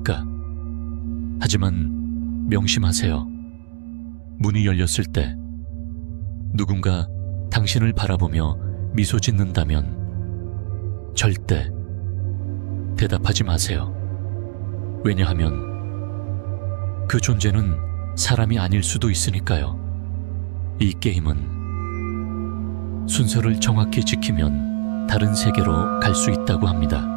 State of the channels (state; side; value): quieter; left; 38.1 dB